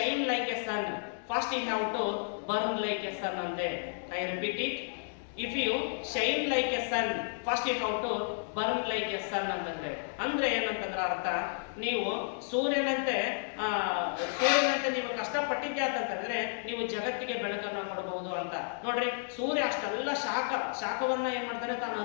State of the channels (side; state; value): right; silent; digital silence